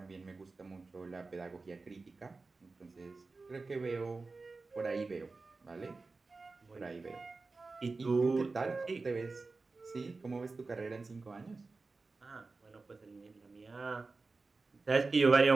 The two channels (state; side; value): quieter; left; 3.8 dB